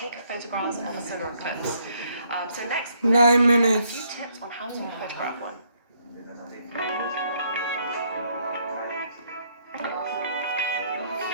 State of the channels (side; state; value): both; inverted; correlation -0.70